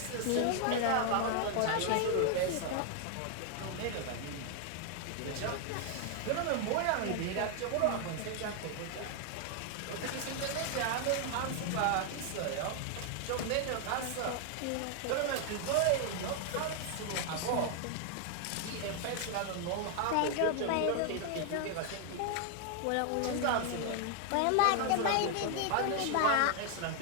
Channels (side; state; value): both; different; correlation 0.00